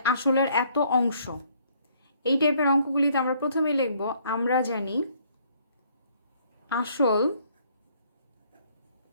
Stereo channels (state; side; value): inverted; both; correlation -0.64